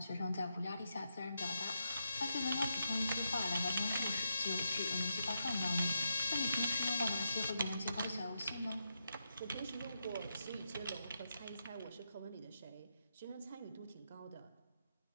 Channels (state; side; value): inverted; both; correlation -0.84